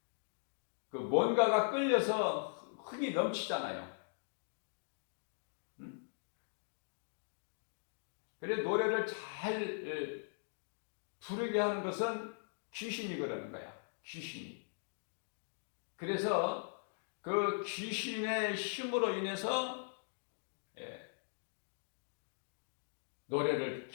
그 뭔가가 끌려서 흥이 넘치잖아요. 그래 노래를 잘 부르게 하는 것은 귀신이 그러는 거야. 귀신이. 그래서 그 귀신의 힘으로 인해서 노래를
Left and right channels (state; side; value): silent; right; digital silence